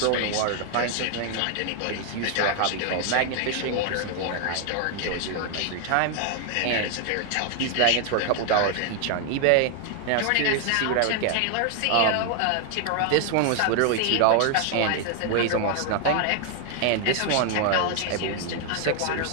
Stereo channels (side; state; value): both; different; correlation 0.00